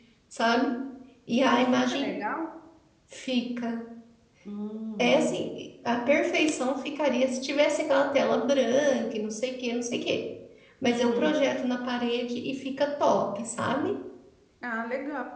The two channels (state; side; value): identical; both; correlation 1.00